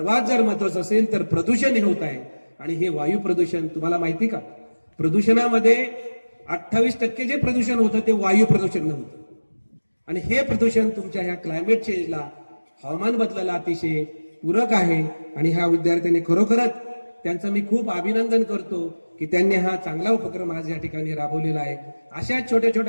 जर महत्वाचं असेल तर प्रदूषण हे होत आहे. आणि हे वायू प्रदूषण तुम्हाला माहिती का? प्रदूषणामध्ये 28% जे प्रदूषण होतं ते वायू प्रदूषण नव्हतं. आणि हे प्रदूषण तुमच्या ह्या क्लायमेट चेंजला, हवामान बदलाला अतिशय पूरक आहे. आणि ह्या विद्यार्थ्यांनी खरोखरच त्यांचं मी खूप अभिनंदन करतो की त्यांनी हा चांगला उपक्रम आज या ठिकाणी राबवलेला आहे. अशा छोट्या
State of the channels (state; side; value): inverted; both; correlation -1.00